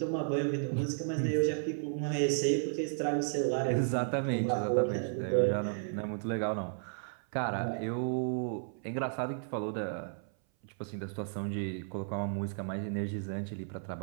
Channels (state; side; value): silent; left; 55 dB below the other